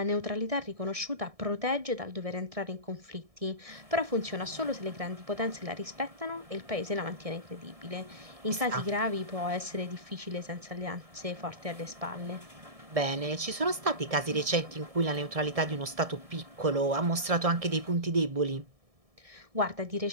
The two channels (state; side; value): late; left; 1.6 ms